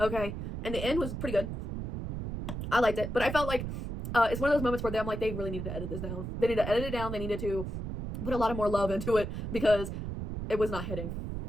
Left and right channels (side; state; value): right; noise; rumble, 5 dB below the sound